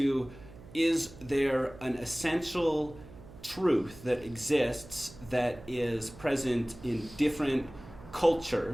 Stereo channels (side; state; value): right; noise; hum, 18 dB below the sound